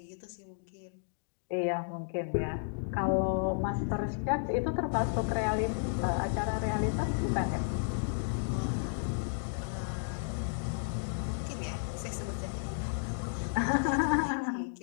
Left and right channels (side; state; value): right; silent; digital silence